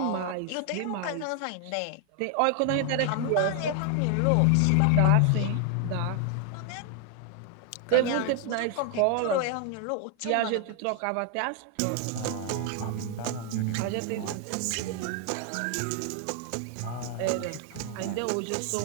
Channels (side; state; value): both; different; correlation 0.00